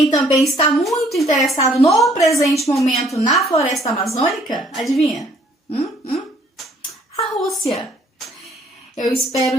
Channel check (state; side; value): normal; both; correlation 0.62